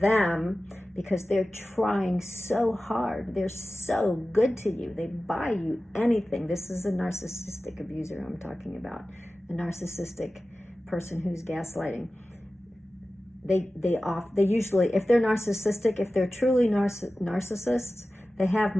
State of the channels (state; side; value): normal; both; correlation 0.95